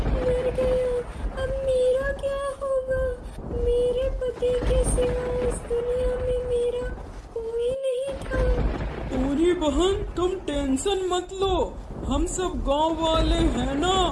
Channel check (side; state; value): both; identical; correlation 1.00